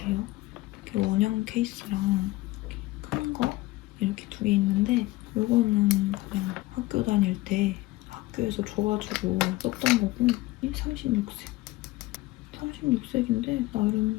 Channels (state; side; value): quieter; right; 19.3 dB